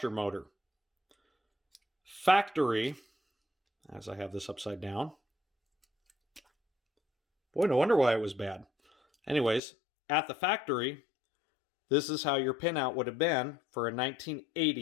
motor. Factory, as I have this upside down. Boy, no wonder why it was bad. Anyways, at the factory, this is how your pinout would have been for a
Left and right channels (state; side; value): drops out; right; at 9.6 s